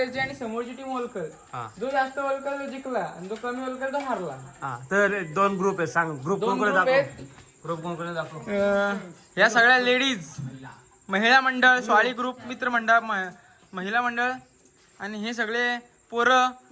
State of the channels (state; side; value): identical; both; correlation 1.00